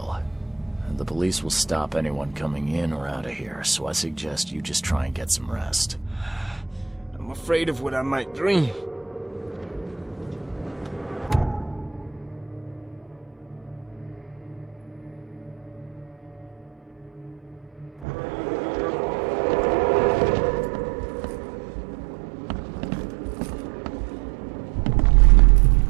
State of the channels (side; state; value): left; drops out; at 18.1 s